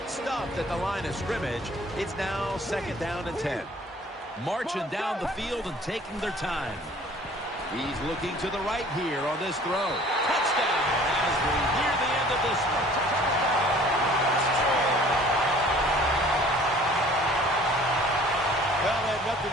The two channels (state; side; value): normal; both; correlation 0.51